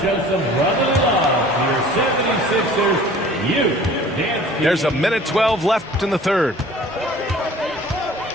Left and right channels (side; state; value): both; normal; correlation 0.48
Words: There's a minute 12 left in the third.